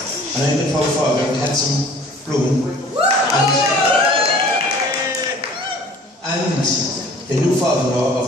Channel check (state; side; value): normal; both; correlation 0.49